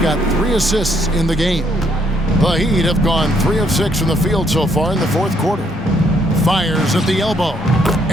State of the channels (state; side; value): normal; both; correlation 0.70